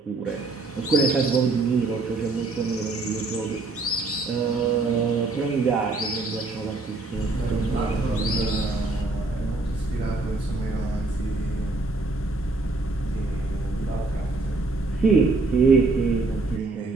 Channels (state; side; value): quieter; left; 3.4 dB